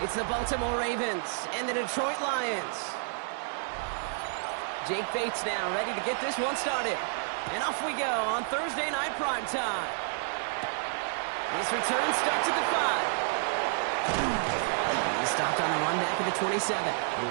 It's the Baltimore Ravens and the Detroit Lions. Jake Bates now ready to get this one started. And off we go on Thursday night primetime. This return starts at the 5. He's stopped on the run back at the 27. The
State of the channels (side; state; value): left; silent; digital silence